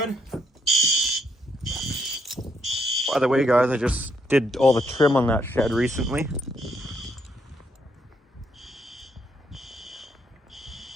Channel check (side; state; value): both; normal; correlation 0.73